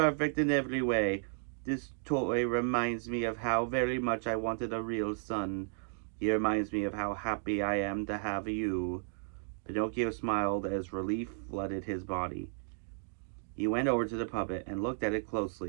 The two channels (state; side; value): silent; left; digital silence